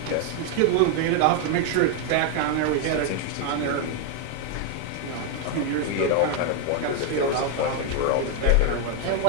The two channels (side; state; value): both; different; correlation 0.01